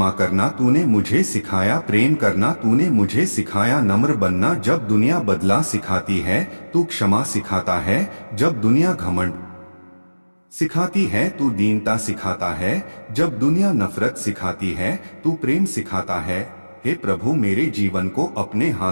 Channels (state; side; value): inverted; both; correlation -1.00